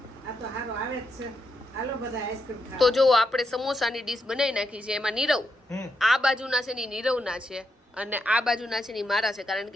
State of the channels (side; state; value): both; normal; correlation 0.82